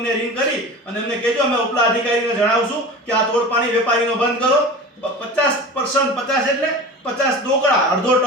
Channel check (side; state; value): both; normal; correlation 0.34